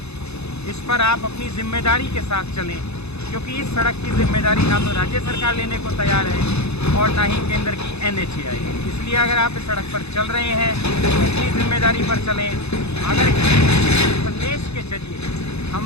इस पर आप अपनी जिम्मेदारी के साथ चलें, क्योंकि इस सड़क की जिम्मेदारी ना तो राज्य सरकार लेने को तैयार है और ना ही केंद्र की NHAI है। इसलिए अगर आप इस सड़क पर चल रहे हैं तो अपनी जिम्मेदारी पर चलें। अगर संदेश के जरिए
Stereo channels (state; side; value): late; right; 0.80 ms